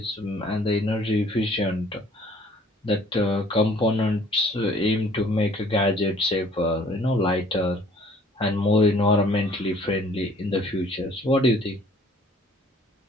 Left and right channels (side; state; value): both; normal; correlation 0.56